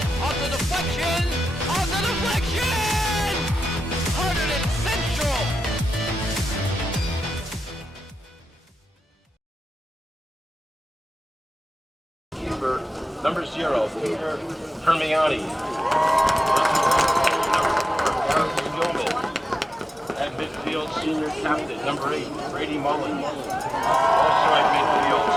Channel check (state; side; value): normal; both; correlation 0.92